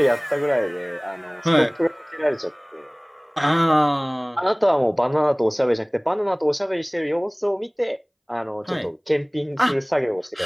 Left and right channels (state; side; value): identical; both; correlation 1.00